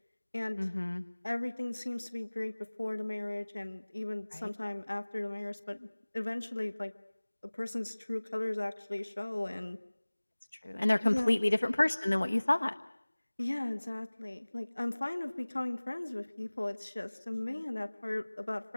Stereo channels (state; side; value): inverted; both; correlation -1.00